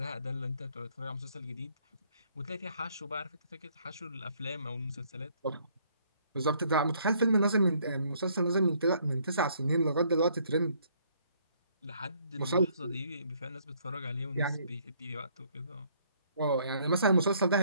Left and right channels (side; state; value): both; inverted; correlation -0.65